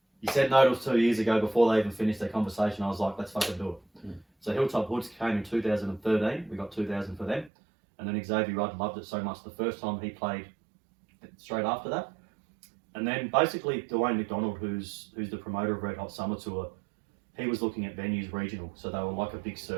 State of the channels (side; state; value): left; drops out; at 7.5 s